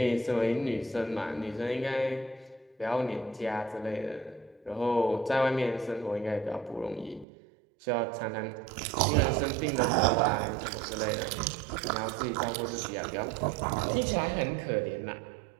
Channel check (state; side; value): drops out; left; at 7.2 s